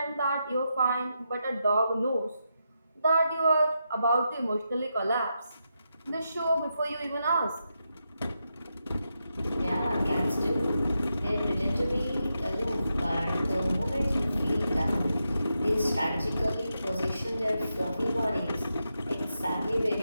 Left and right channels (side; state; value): both; inverted; correlation -0.85